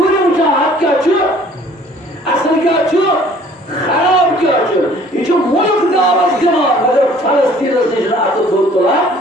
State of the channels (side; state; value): both; normal; correlation 0.54